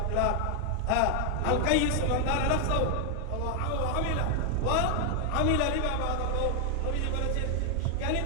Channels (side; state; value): both; different; correlation 0.00